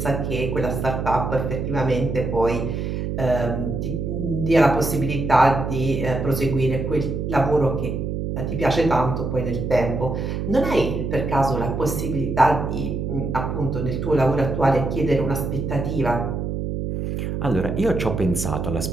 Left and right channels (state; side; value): noise; right; hum, 3 dB below the sound